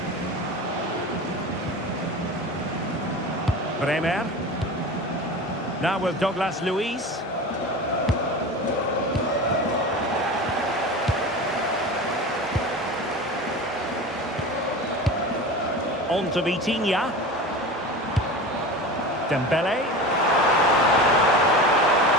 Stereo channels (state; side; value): normal; both; correlation 0.31